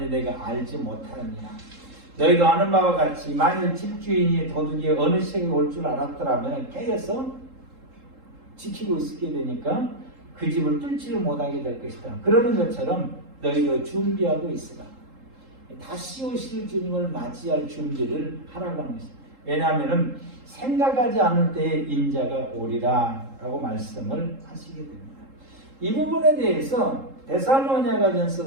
내가 알지 못하느니라. 너희도 아는 바와 같이 만일 집주인이 도둑이 어느 시각에 올 줄 알았더라면 깨어서 지키고 있게 되니까 그 집을 뚫지를 못하게 될 것이다. 그러는 것처럼 너희도 준비하고 있으라. 다시 오실 주님을 맞이할 준비를 하라고 하는 것입니다. 왜냐하면 생각하지 않을 때에 인자가 오리라 라고 말씀을 하시게 됩니다. 이 부분에 대해서 데살로니가전서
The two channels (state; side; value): late; left; 3.7 ms